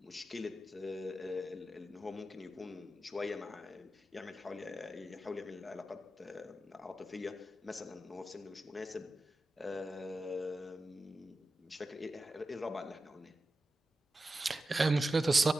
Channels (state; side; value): normal; both; correlation 0.92